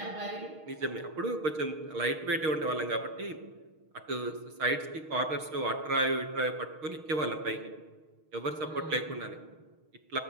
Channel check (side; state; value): left; late; 6.4 ms